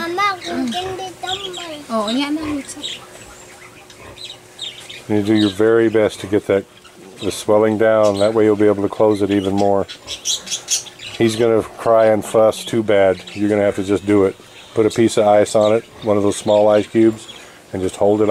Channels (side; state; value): both; identical; correlation 1.00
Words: hindi tambay. Oh, niya na. You do your very best to get the swelling down. That way you'll be able to close it even more. He's going to cry and fuss too bad. You're going to have to just do it. Put a piece of ice on it, one of those small ice cubes, and just hold it